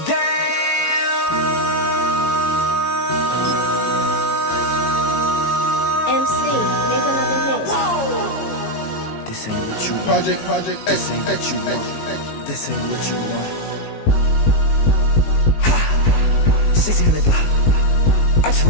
MC, make another hit. Whoa. This ain't what you want. Project, This ain't what you want. This ain't what you want. 1600 block. I just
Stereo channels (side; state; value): right; late; 18 ms